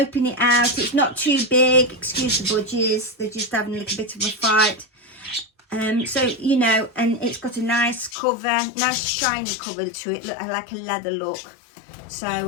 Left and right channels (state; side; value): drops out; right; at 8.2 s